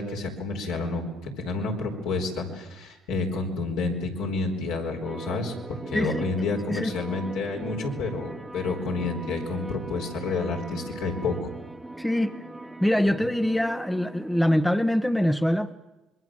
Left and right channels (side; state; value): both; normal; correlation 0.78